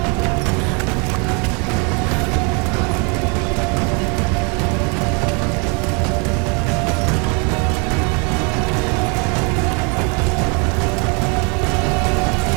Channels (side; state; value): left; quieter; 33.6 dB